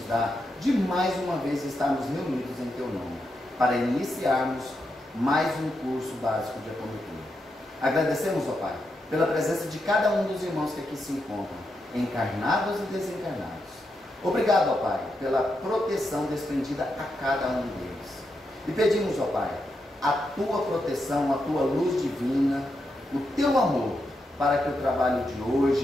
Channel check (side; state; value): both; normal; correlation 0.84